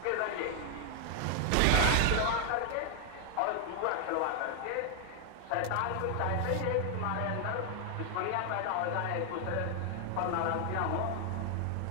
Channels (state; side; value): different; both; correlation 0.00